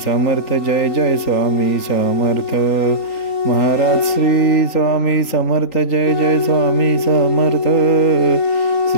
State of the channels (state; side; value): late; right; 3.9 ms